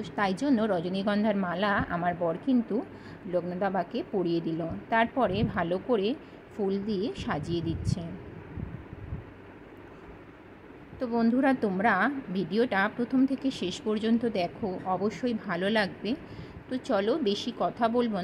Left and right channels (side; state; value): both; identical; correlation 1.00